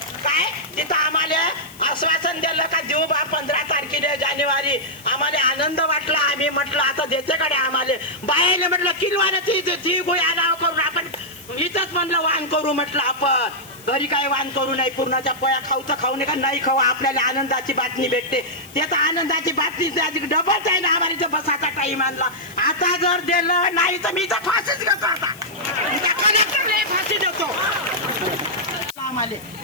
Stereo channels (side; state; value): left; noise; hiss, 21 dB below the sound